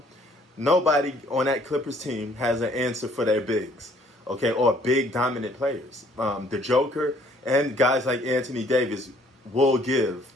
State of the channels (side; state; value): both; normal; correlation 0.61